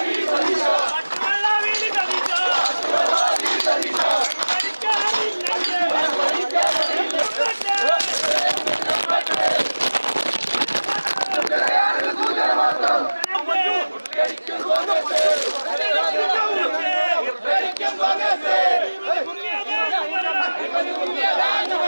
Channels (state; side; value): inverted; both; correlation -1.00